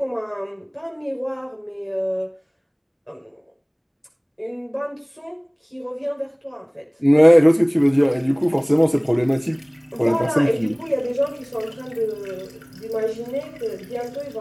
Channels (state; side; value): identical; both; correlation 1.00